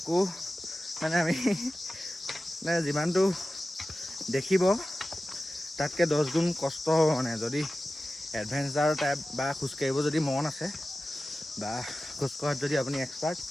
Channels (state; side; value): normal; both; correlation 0.95